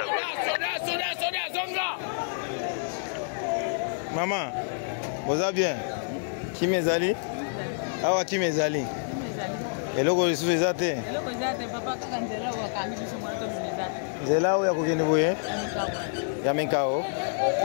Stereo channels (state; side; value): silent; right; digital silence